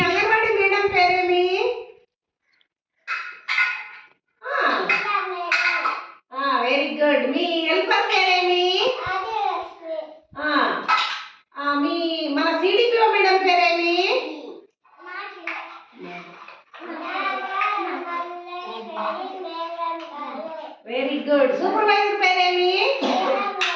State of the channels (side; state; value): both; identical; correlation 1.00